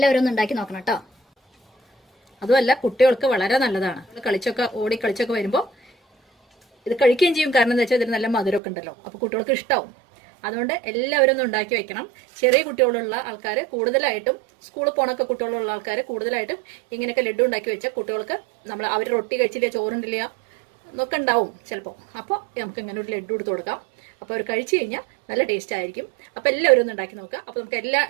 ഒന്ന് ഉണ്ടാക്കി നോക്കണം കേട്ടോ. അതുമല്ല, കുട്ടികൾക്ക് വളരെ നല്ലതാണ്. ഓടി കളിച്ചൊക്കെ വരുമ്പോൾ ഇത് കഴിക്കുകയും ചെയ്യും. കാരണം എന്താ വെച്ചാൽ ഇതിന് നല്ല മധുരമൊക്കെ ഉണ്ടല്ലോ. അപ്പോൾ കുട്ടികൾക്ക് ഇഷ്ടമാവും. അതുകൊണ്ട് എല്ലാവരും ഒന്ന് ഉണ്ടാക്കി വെക്കണം. ചെറിയ കുട്ടികളുള്ള ആൾക്കാർ കൂടുതലായിട്ടും, സ്കൂളിൽ പോണൊക്കെ കുട്ടികളുള്ള ആൾക്കാർ കൂടുതലായിട്ടും ഇങ്ങനെയൊക്കെ ലഡ്ഡു ഉണ്ടാക്കി വെച്ചാൽ കുട്ടികൾക്ക് അവർ റൊട്ടി കഴിച്ചില്ല, ചോറുണ്ടില്ല എന്നൊക്കെ ഉണ്ടാവും ചിലപ്പോൾ. അപ്പോൾ നമുക്ക് ഇങ്ങനെ ഒരു ലഡ്ഡു എടുത്ത് കൊടുക്കാം. അപ്പോൾ അവർ കഴിച്ചു കഴിഞ്ഞാൽ നല്ല ടേസ്റ്റ് ആയിരിക്കും. അപ്പോൾ എല്ലാവരും ഒന്ന് ഉണ്ടാക്കി നോക്കുക. അപ്പോൾ നമുക്ക് എല്ലാ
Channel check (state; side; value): drops out; left; at 8.6 s